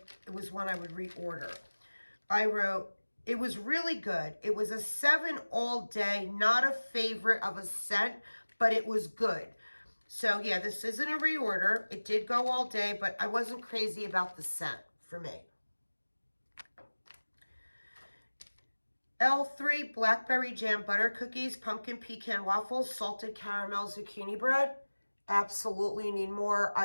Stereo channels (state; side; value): inverted; both; correlation -1.00